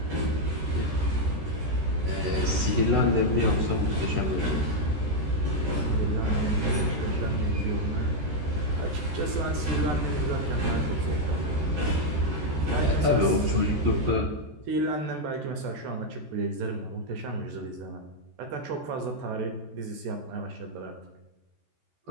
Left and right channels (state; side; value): late; left; 13 ms